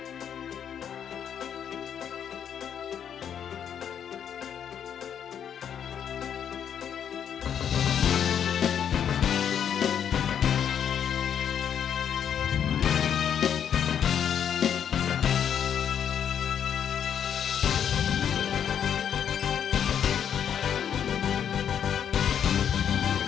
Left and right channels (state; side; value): quieter; right; 8.6 dB